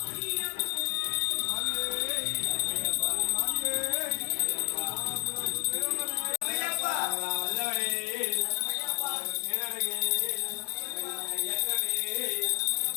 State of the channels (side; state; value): right; silent; digital silence